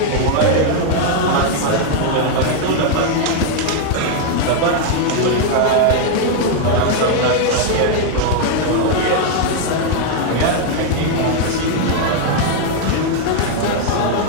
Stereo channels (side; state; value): both; different; correlation 0.00